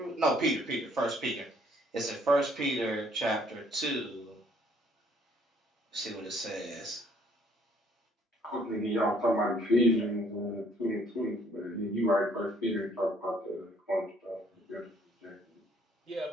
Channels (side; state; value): both; normal; correlation 0.63